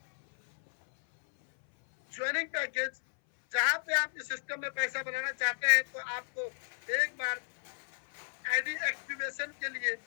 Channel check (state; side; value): silent; right; 56 dB below the other